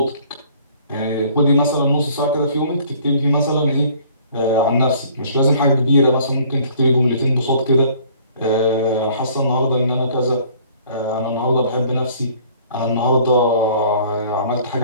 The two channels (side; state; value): both; inverted; correlation -0.55